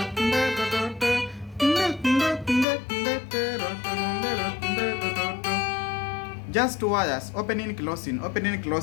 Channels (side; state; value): right; drops out; at 2.7 s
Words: just 2 wires, opening, closing, opening,